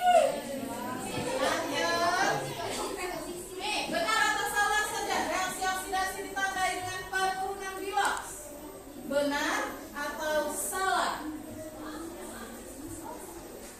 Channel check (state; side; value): identical; both; correlation 1.00